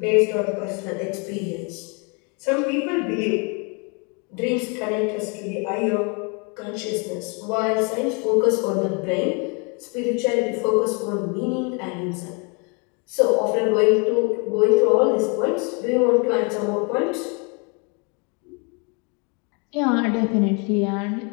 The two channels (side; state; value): right; quieter; 33.7 dB